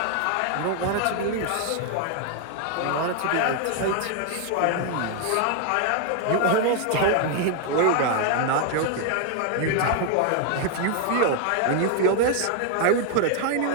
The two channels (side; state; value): both; different; correlation 0.00